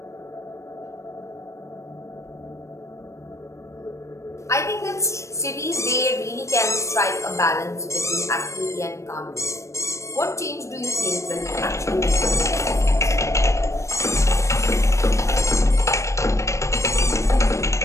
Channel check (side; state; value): right; late; 0.14 ms